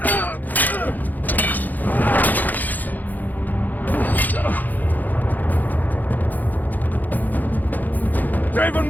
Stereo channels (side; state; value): right; late; 0.084 ms